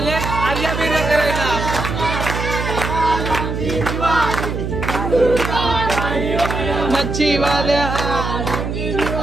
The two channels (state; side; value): noise; right; hum, 4 dB below the sound